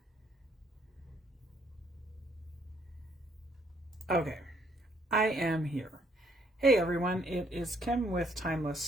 Okay, I am here. Hey everyone, it is Kim with Timeless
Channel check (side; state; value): both; normal; correlation 0.68